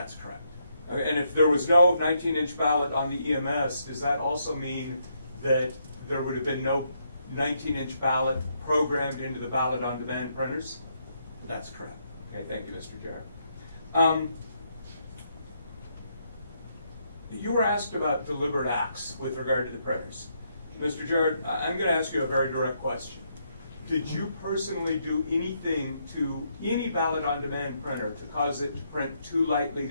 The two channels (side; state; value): both; inverted; correlation -0.76